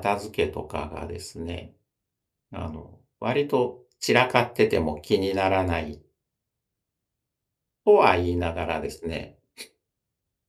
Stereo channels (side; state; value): both; identical; correlation 1.00